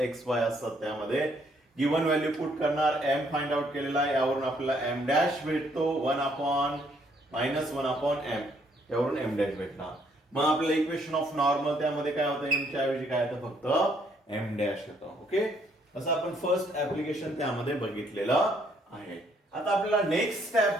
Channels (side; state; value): both; normal; correlation 0.68